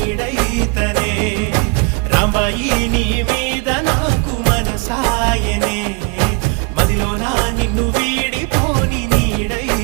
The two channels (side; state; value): left; quieter; 32.5 dB